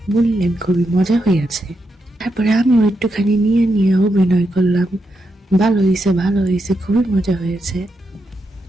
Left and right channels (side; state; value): both; normal; correlation 0.84